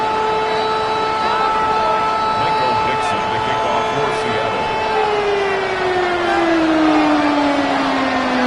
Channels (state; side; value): identical; both; correlation 1.00